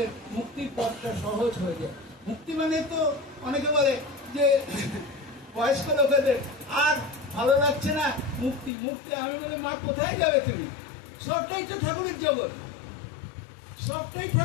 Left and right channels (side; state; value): right; drops out; at 8.7 s